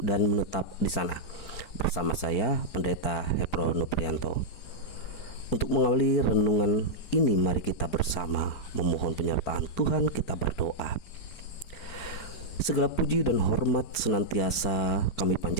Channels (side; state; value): right; late; 4.5 ms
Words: dan menetap di sana. Bersama saya Pendeta Hepro Nuprianto. Untuk mengawali renungan ini, mari kita bersama memohon penyertaan Tuhan. Kita berdoa. Segala puji dan hormat senantiasa kami